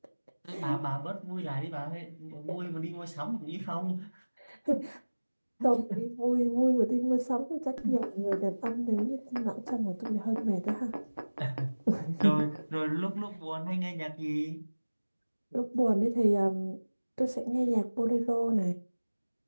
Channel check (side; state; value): both; inverted; correlation -1.00